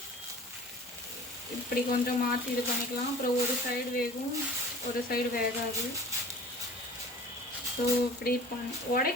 இப்படி கொஞ்சம் மாற்றி இது பண்ணிக்கலாம். அப்புறம் ஒரு சைடு வேகும், ஒரு சைடு வேகாது. ஸோ இப்படி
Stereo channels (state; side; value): normal; both; correlation 0.45